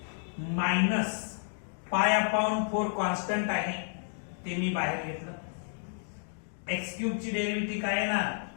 मायनस पाय अपॉन 4 कॉन्स्टंट आहे, ते मी बाहेर घेतलं. x क्यूब ची डेरिव्हेटिव्ह काय येणार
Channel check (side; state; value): right; silent; digital silence